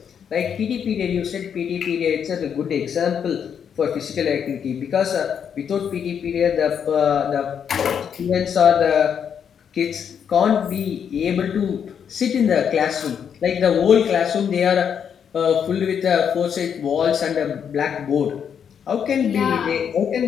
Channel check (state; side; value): quieter; right; 7.8 dB